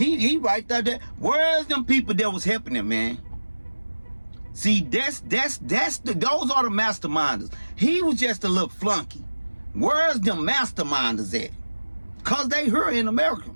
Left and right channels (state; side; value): inverted; both; correlation -1.00